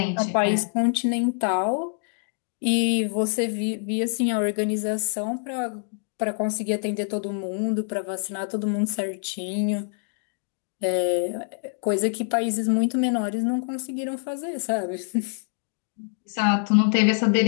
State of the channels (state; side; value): silent; right; 61 dB below the other